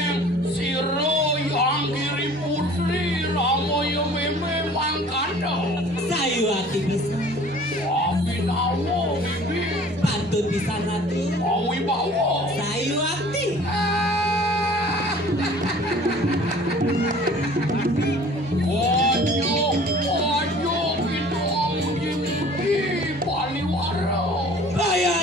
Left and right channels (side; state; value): both; normal; correlation 0.49